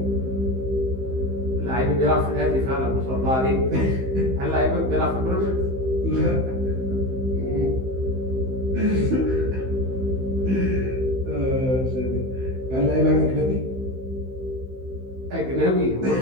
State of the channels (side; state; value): left; late; 15 ms